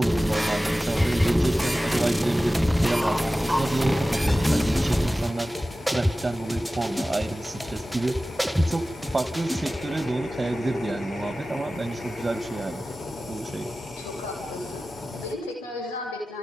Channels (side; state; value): both; normal; correlation 0.95